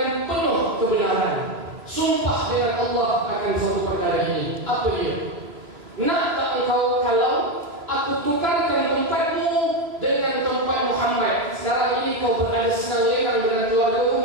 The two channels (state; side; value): late; left; 3.0 ms